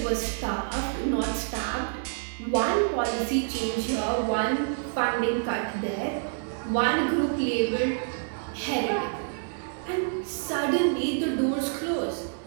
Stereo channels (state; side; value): silent; left; digital silence